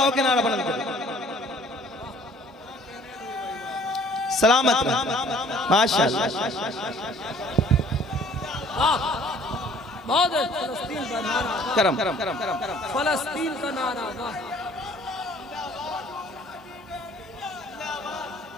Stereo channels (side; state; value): both; normal; correlation 0.55